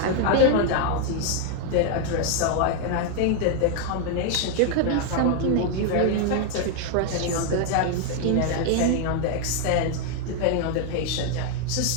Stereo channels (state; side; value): different; both; correlation 0.00